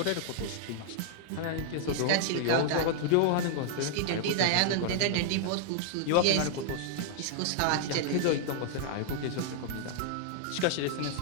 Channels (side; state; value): both; different; correlation -0.01